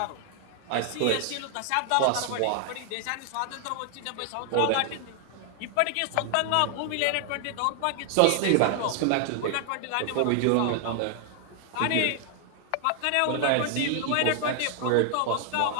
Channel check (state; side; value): different; both; correlation 0.00